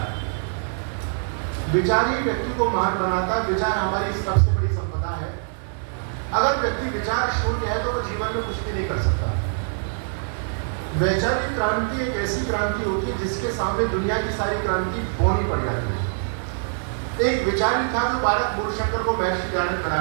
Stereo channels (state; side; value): silent; left; digital silence